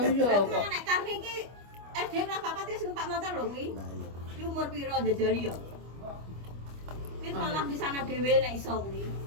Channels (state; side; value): late; left; 25 ms